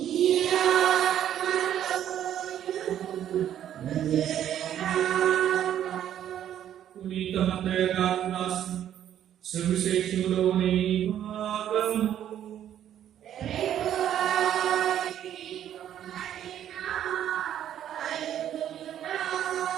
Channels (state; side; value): quieter; left; 10.7 dB